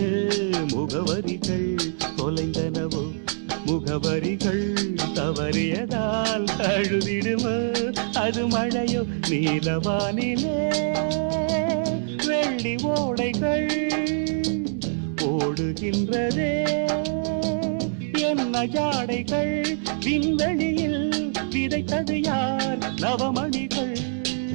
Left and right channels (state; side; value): silent; left; digital silence